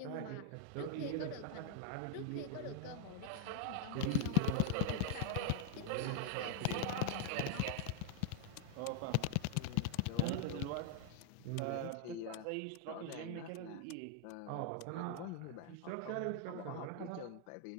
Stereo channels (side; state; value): both; different; correlation 0.00